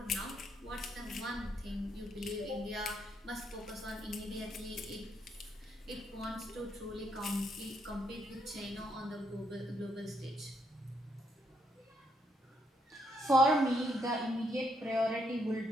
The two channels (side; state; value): both; normal; correlation 0.75